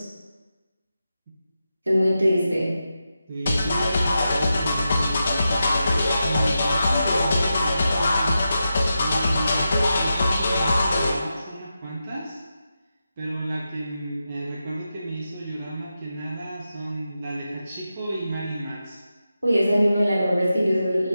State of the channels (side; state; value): both; inverted; correlation -0.89